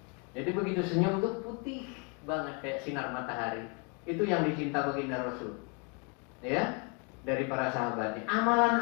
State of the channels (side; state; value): right; quieter; 35.3 dB